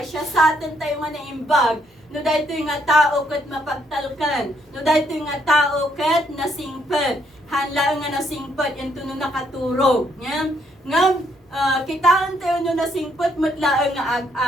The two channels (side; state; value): both; normal; correlation 0.72